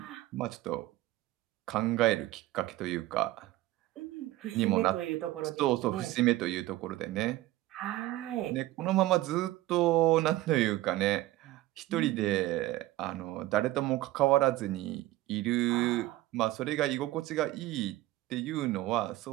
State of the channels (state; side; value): quieter; left; 16.7 dB